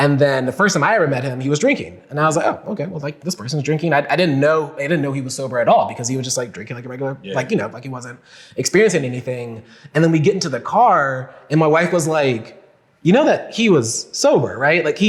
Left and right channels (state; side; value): identical; both; correlation 1.00